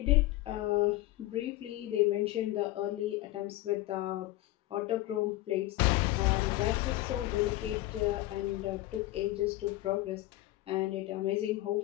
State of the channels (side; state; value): right; quieter; 17.2 dB